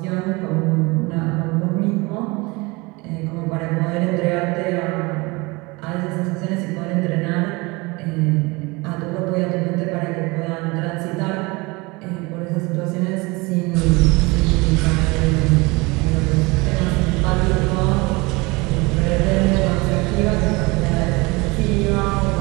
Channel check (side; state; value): left; quieter; 24.9 dB